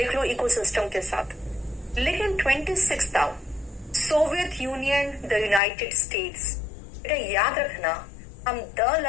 लो इकोसिस्टम के साथ। लेकिन 26 था Soviet union, the United states. बेटा याद रखना हम द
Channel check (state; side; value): drops out; right; at 5.6 s